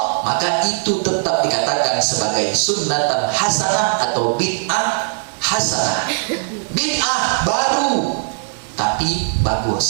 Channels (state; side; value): silent; left; digital silence